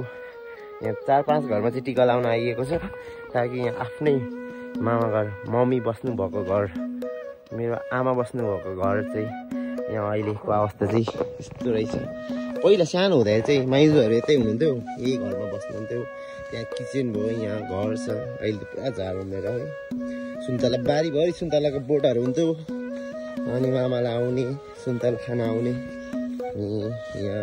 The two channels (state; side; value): identical; both; correlation 1.00